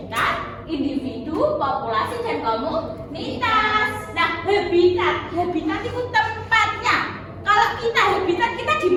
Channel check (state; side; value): identical; both; correlation 1.00